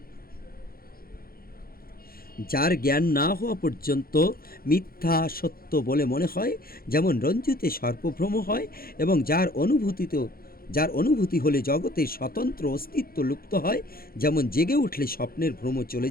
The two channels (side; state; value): right; late; 0.43 ms